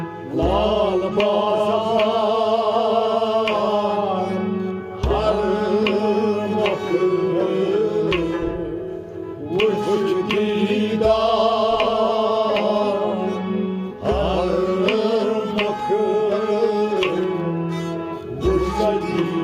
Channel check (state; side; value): identical; both; correlation 1.00